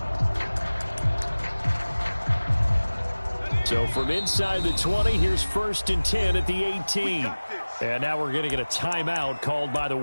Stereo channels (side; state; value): both; inverted; correlation -1.00